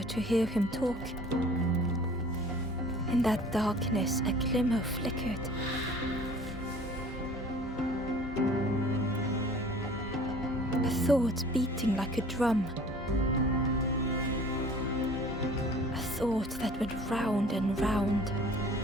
to hear him talk. In that darkness, a glimmer flickered. A thought beating like a drum. A thought that went round and round.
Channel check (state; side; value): normal; both; correlation 0.48